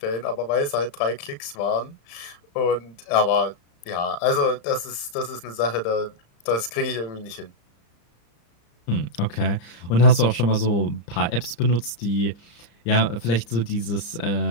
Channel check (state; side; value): late; right; 35 ms